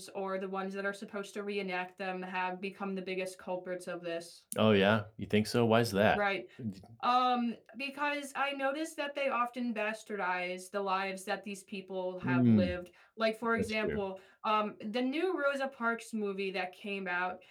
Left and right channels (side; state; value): both; identical; correlation 1.00